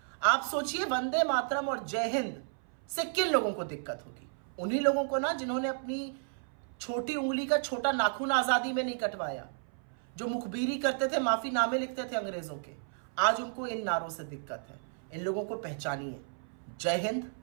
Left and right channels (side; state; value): left; silent; 56 dB below the other